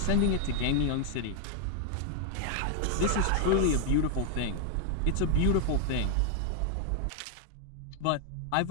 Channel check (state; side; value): different; both; correlation 0.00